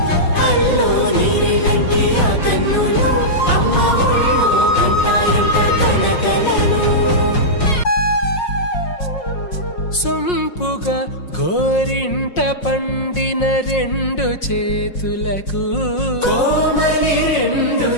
అల్లో నీరెళ్ళంటే ఆ కన్నులు అమ్మ ఒళ్ళో కంటాయంట కలకలను సొంపుగా గోరింట పండిన రెండు చేతులకు కోమలి రెండు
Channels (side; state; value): right; late; 5.5 ms